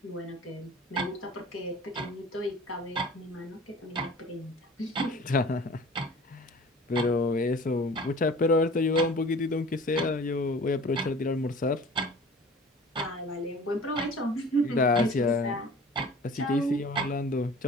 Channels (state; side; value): normal; both; correlation 0.44